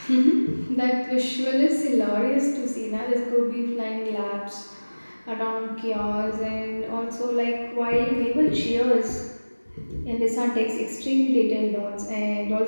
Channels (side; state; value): both; inverted; correlation -1.00